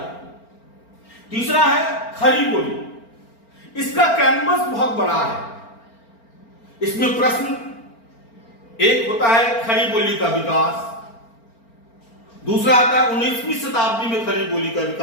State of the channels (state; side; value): late; right; 4.4 ms